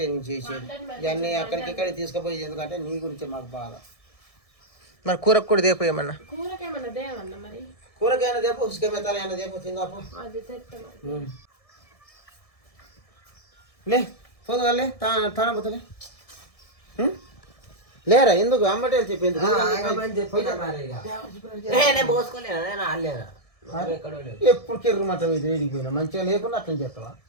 నేను చేసేది ఇవన్నీ అక్కడికి ఇక్కడికి తీసుకుపోయేది. ఎందుకంటే నీ గురించే మాకు బాధ. మరి కూరకు కూడా దేపోయేమన్నా? కూరకైనా దేపో, ఉసుకమెత్తాలైనా దేపో, తిందాపో. లే పోదుగాలే తాన పోతలే. లేరా ఎందుకు అమ్మటే చెప్పింది? ఎప్పుడు కెర్రమాట వేడిపోయినా మంచిగా లేకుండా అట్లా చేస్తావా?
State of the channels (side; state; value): right; late; 1.6 ms